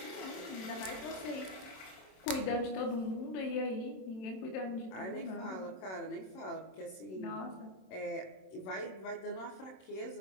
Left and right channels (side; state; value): right; late; 27 ms